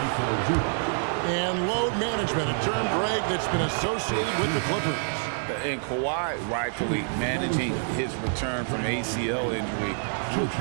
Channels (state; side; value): silent; left; 60 dB below the other